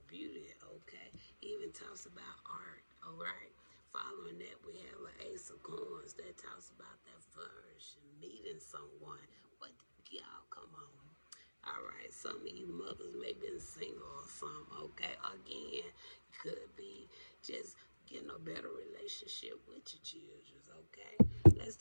beauty, okay? Even talks about art, all right? Following that, we have an Ace of Coins that talks about that flourishing, meeting someone. But y'all, come on. All right, some of you mothers may be single or something, okay? Again, could be just getting a better relationship with your children, okay? Let's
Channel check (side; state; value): both; inverted; correlation -1.00